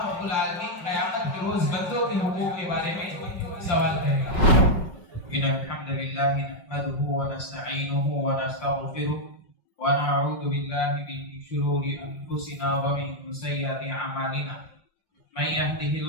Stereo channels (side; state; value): right; late; 5.4 ms